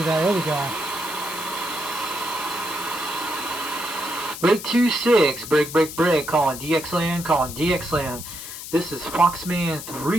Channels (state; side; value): noise; left; hiss, 10 dB below the sound